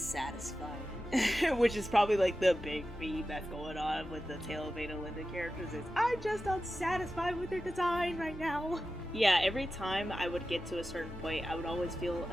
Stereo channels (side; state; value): both; normal; correlation 0.93